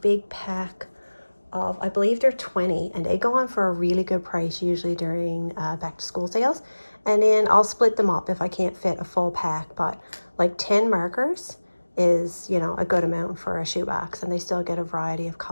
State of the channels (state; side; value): inverted; both; correlation -1.00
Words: pack of, I believe they're 20, and they go on for a really good price usually during back to school sales. And then I'll split them up if I can't fit a full pack, but like 10 markers is, you know, a good amount for a shoebox, and they still get a variety of